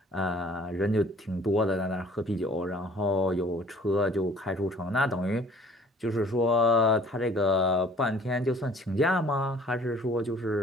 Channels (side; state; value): both; normal; correlation 0.53